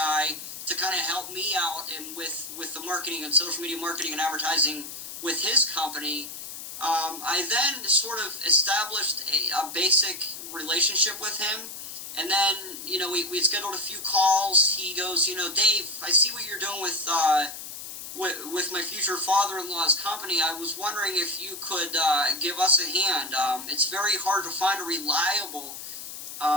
to kind of help me out and with the marketing and social media marketing and advertising with his company. I then sort of established a basic relationship with him, and then we scheduled a few calls. He goes, Dave, I see what you're doing with my future father-in-law's company. I was wondering if you could give us a hand. It's very hard to find a reliable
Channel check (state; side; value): noise; left; hiss, 10 dB below the sound